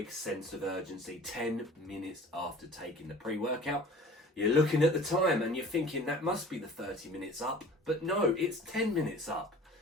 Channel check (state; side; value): normal; both; correlation 0.45